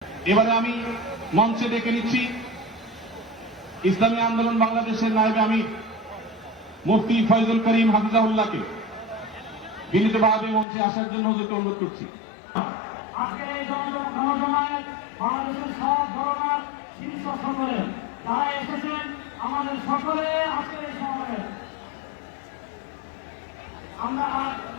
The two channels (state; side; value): drops out; right; at 10.7 s